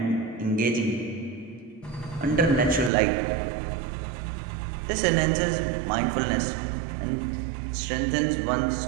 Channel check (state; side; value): drops out; left; at 2.9 s